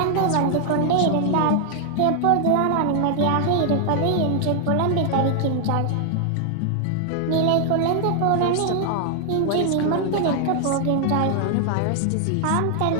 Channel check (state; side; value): different; both; correlation 0.00